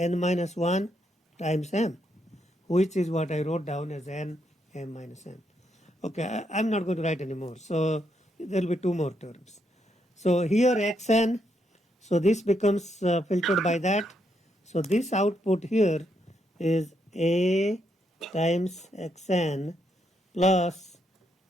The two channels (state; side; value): normal; both; correlation 0.78